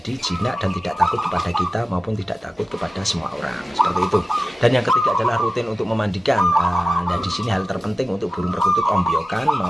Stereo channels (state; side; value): normal; both; correlation 0.95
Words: jinak dan tidak takut kepada kita maupun tidak takut kepada semua orang, seperti itu. Dan yang ketiga adalah rutin untuk memandikan. Nah, di sini hal terpenting untuk burung perkutut ombyokan